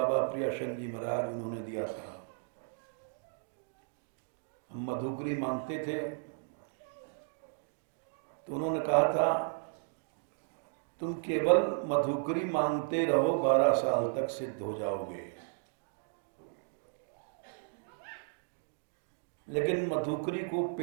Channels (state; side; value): silent; left; digital silence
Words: प्रियाशंकर जी महाराज, उन्होंने दिया था। हम मधुकरी मांगते थे तो उन्होंने कहा था तुम केवल मधुकरी मांगते रहो, 12 साल तक सिद्ध हो जाओगे। लेकिन मधुकरी को